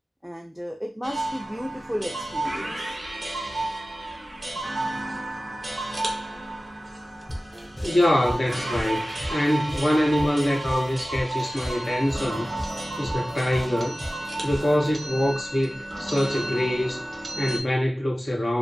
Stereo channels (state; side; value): normal; both; correlation 0.96